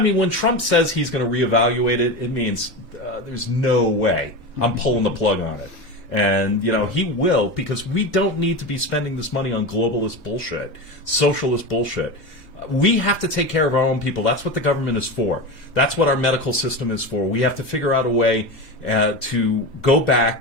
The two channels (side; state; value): right; late; 2.0 ms